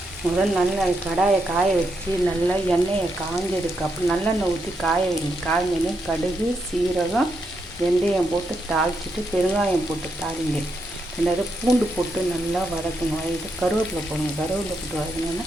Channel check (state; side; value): normal; both; correlation 0.81